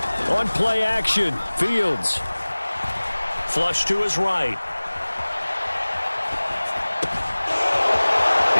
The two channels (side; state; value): both; inverted; correlation -1.00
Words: On play action, Fields. Flush to his right.